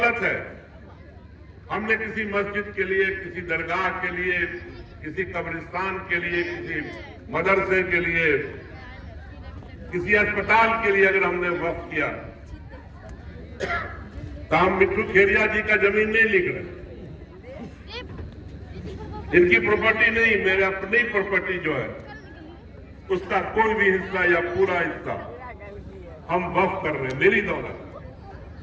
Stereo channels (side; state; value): both; identical; correlation 1.00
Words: है, हमने किसी मस्जिद के लिए, किसी दरगाह के लिए, किसी कब्रिस्तान के लिए, किसी मदरसे के लिए, किसी अस्पताल के लिए अगर हमने वक्फ किया तो हम मिट्टू खेरिया जी का जमीन नहीं लिख रहे, इनकी प्रॉपर्टी नहीं, मेरे अपनी प्रॉपर्टी जो है उसका कोई भी हिस्सा या पूरा हिस्सा हम वक्फ कर रहे हैं, मेरी दौलत।